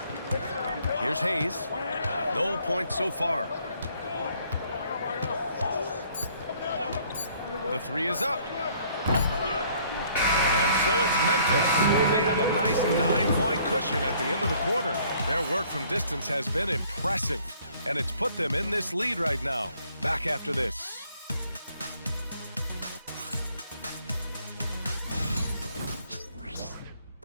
Here's Hayes. No points so far. The 3 is up. And so it's Memphis. They have a nice 9-point cushion at the end of the quarter. Their work from distance has been impressive, and it's put them in this lead right now. Back after this.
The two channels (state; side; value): inverted; both; correlation -0.61